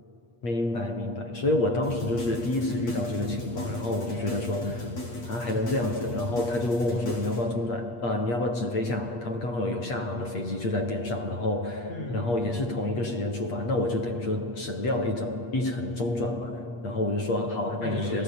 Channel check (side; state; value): right; late; 8.5 ms